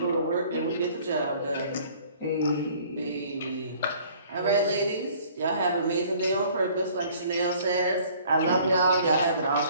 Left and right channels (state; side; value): inverted; both; correlation -0.54